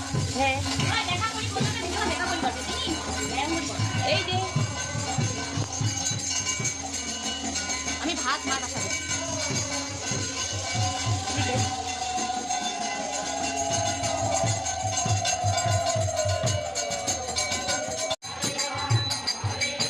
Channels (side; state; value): both; identical; correlation 1.00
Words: হ্যাঁ এই যে আমি ভাত মা বসাবো